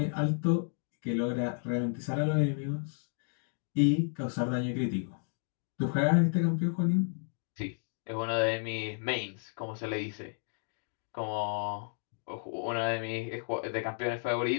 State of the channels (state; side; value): silent; right; 56 dB below the other